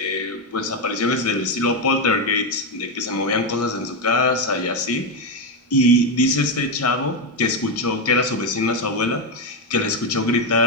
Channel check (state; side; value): normal; both; correlation 0.07